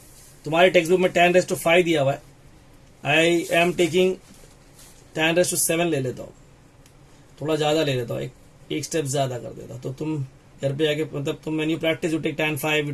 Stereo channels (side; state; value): both; identical; correlation 1.00